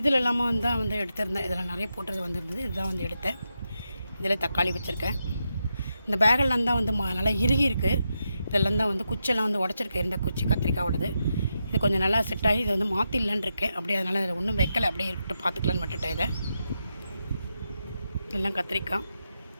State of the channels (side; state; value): both; inverted; correlation -0.86